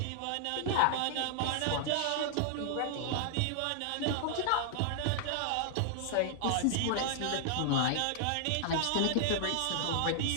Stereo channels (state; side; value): different; both; correlation -0.01